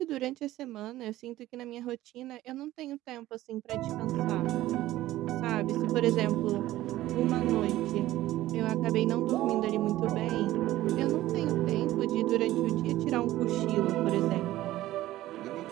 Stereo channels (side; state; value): left; quieter; 15.5 dB